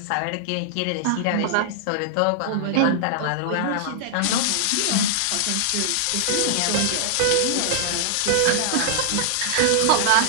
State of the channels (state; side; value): different; both; correlation -0.01